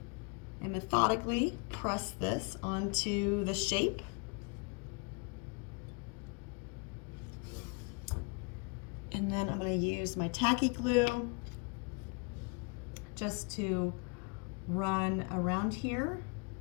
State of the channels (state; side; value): quieter; right; 33.2 dB